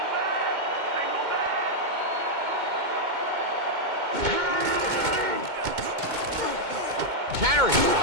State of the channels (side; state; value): left; late; 2.2 ms